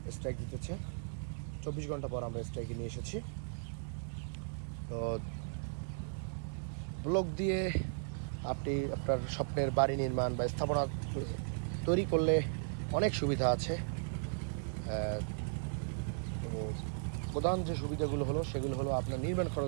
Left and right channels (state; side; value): silent; left; digital silence